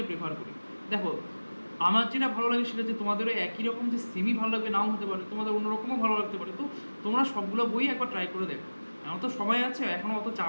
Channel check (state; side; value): inverted; both; correlation -1.00